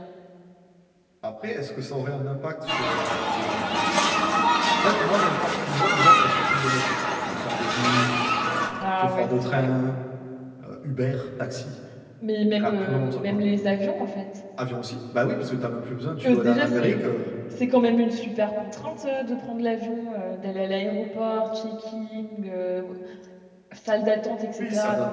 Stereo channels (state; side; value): identical; both; correlation 1.00